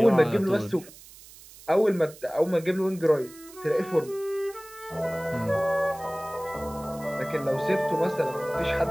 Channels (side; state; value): right; noise; hiss, 20 dB below the sound